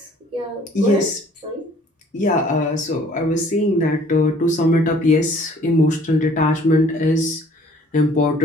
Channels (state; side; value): normal; both; correlation 0.56